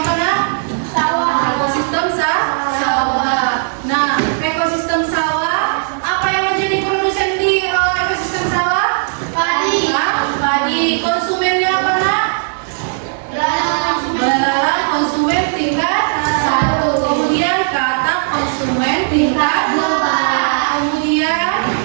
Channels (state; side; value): silent; left; digital silence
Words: nah? Sawah. Ekosistem sawah. Nah, ekosistem sawah apa yang menjadi produsen di ekosistem sawah? Padi. Padi. Konsumennya apa nak? Belalang konsumen tingkat 1. Kemudian kata konsumen tingkat 2. Kemudian